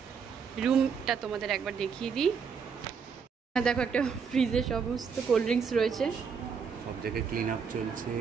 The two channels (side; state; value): left; quieter; 6.2 dB